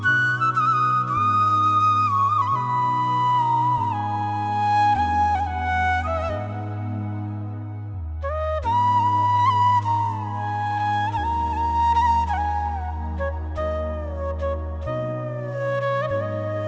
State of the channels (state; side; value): identical; both; correlation 1.00